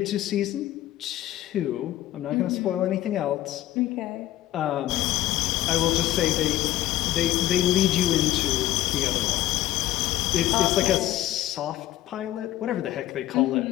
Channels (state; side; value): quieter; right; 14.4 dB